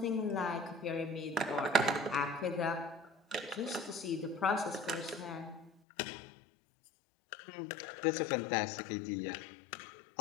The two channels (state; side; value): drops out; right; at 5.7 s